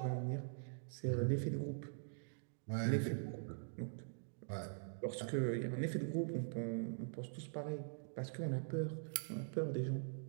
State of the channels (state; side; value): silent; left; digital silence